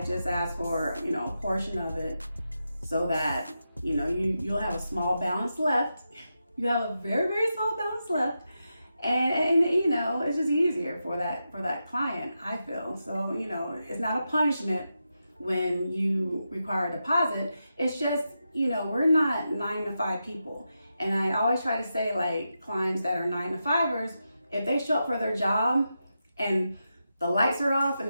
just ask for, a portion of it so that, you'll have a small balance left. You have a very, very small balance left. And it's just easier for that client, I feel. So, it's not a punishment when you require a deposit. It's just, we're not 9-to-5 people. And I always try to say, like, clients that are 9-to-5ers, if they show up for their job and the lights are off and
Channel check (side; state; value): both; inverted; correlation -0.88